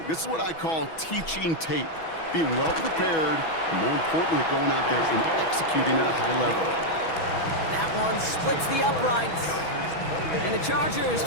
This is what I call teaching tape. Being well prepared, and more importantly, going out there and executing at a high level. That one splits the uprights. And the Chargers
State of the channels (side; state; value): right; late; 6.1 ms